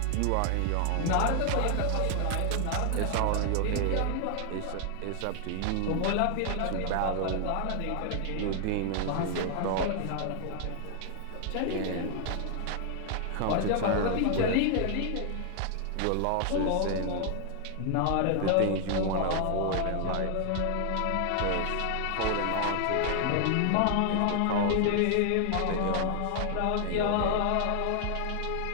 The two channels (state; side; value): different; both; correlation 0.00